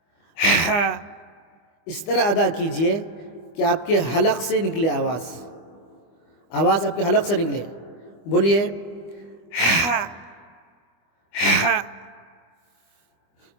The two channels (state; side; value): late; right; 25 ms